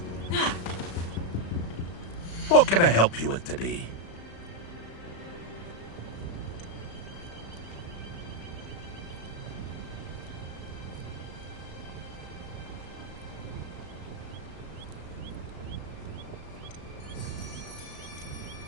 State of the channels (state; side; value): late; right; 35 ms